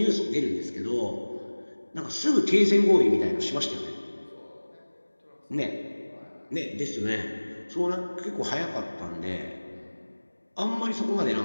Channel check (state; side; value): inverted; both; correlation -1.00